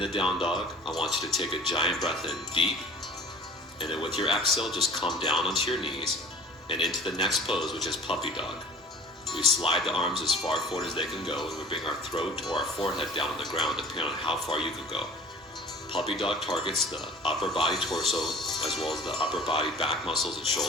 down dog, I want you to take a giant breath in deep, and then with your exhale, just come down onto your knees and into the next pose, which is puppy dog. We slide the arms as far forward as they can go, and we bring our throat or our forehead down on the ground, depending on how far you can go. Puppy dog targets the upper body torso, as well as the upper body back muscles and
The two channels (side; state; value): both; normal; correlation 0.45